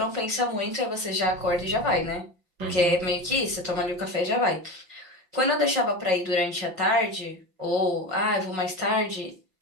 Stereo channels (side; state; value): left; late; 5.7 ms